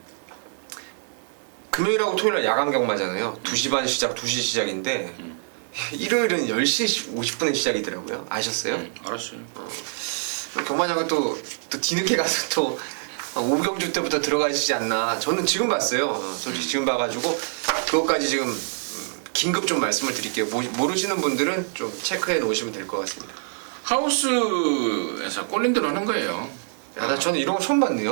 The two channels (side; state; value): left; silent; digital silence